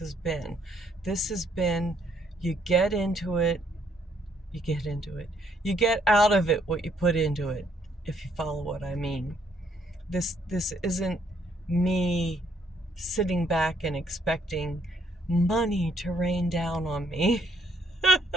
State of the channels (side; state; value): both; normal; correlation 0.68